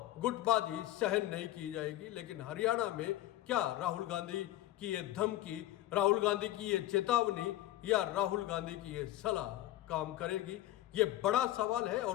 गुटबाजी सहन नहीं की जाएगी। लेकिन हरियाणा में क्या राहुल गांधी की ये धमकी, राहुल गांधी की ये चेतावनी या राहुल गांधी की ये सलाह काम करेगी? ये बड़ा सवाल है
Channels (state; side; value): quieter; right; 14.8 dB